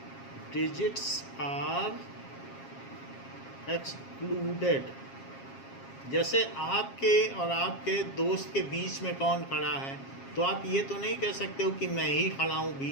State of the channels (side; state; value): right; late; 7.4 ms